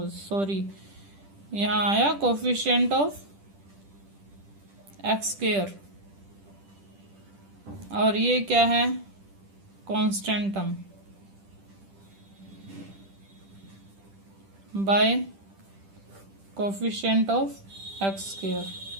सॉरी यहाँ आया कोफिशिएंट ऑफ x², और ये क्या है, constant term by coefficient of x²।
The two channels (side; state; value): left; late; 10 ms